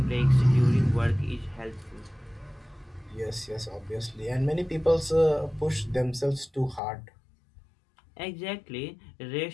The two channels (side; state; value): right; drops out; at 6.8 s